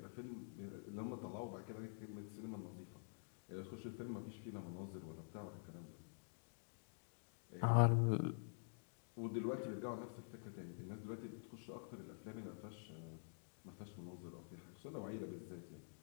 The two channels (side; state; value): right; silent; digital silence